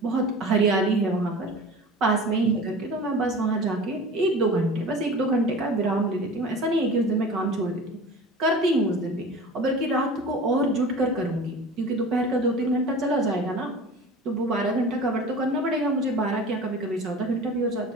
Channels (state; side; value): normal; both; correlation 0.38